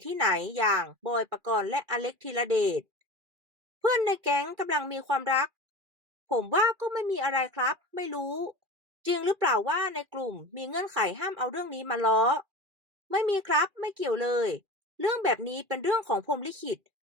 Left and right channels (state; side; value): late; left; 2.4 ms